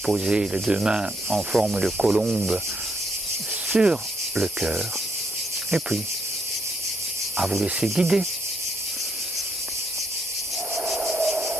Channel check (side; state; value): both; normal; correlation 0.74